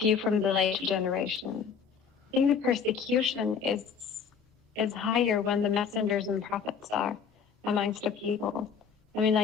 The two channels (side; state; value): right; quieter; 6.6 dB